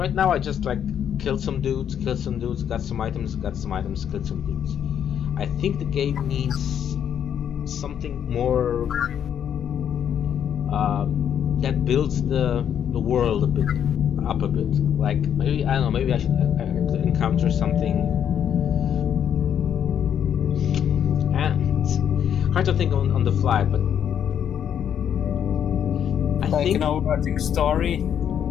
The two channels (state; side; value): quieter; right; 9.0 dB